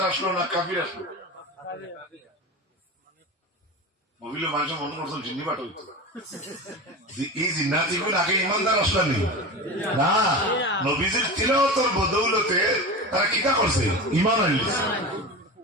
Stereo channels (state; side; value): normal; both; correlation 0.27